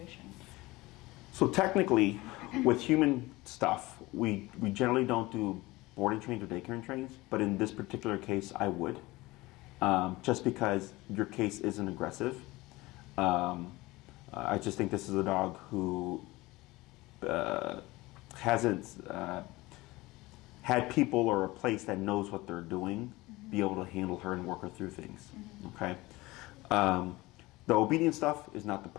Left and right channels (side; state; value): right; quieter; 20.5 dB